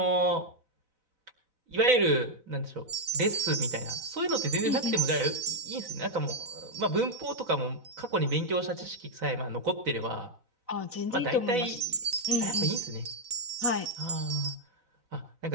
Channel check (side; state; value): left; late; 4.0 ms